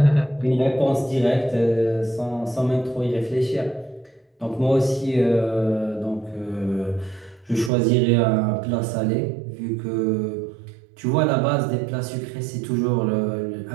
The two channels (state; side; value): drops out; left; at 7.7 s